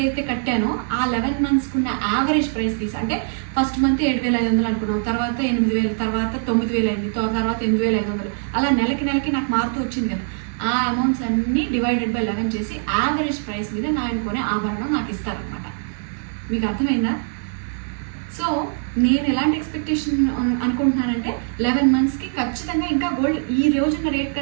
కట్టానో ఆ 11 monthsకి ఉన్న యావరేజ్ ప్రైస్ తీసి అంటే ఫస్ట్ మంత్ 7,500 అనుకున్నాం, తర్వాత 8,000, తర్వాత 9,000 అయింది, తర్వాత 8,500 అలా నెలకి నాకు మారుతూ వచ్చింది కదా. ఆ అమౌంట్స్ అన్నీ డివైడెడ్ బై 11 చేసి యావరేజ్ ప్రైస్ మీద నేను కొనే ఆభరణం నాకు ఇస్తారనమాట. మీకు అర్థమైందా? సో నేను ఎలాంటి ఎక్స్పెక్టేషన్ అనుకుంటున్నానంటే 11 monthsకి ఖచ్చితంగా ఇంకా గోల్డ్ ఈ రోజున్న రేట్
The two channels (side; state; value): left; silent; 64 dB below the other